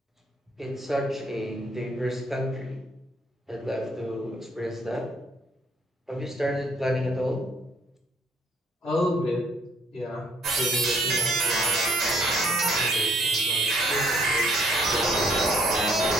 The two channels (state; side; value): normal; both; correlation 0.66